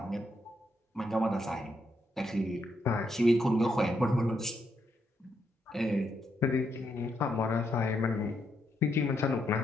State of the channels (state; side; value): normal; both; correlation 0.79